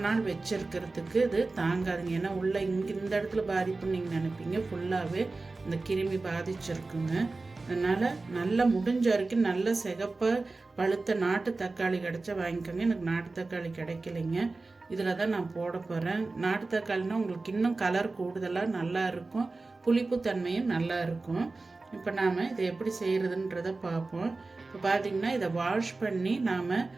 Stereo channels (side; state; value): left; quieter; 3.5 dB